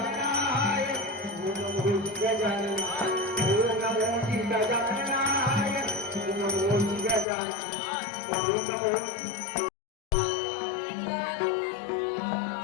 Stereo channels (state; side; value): drops out; right; at 7.2 s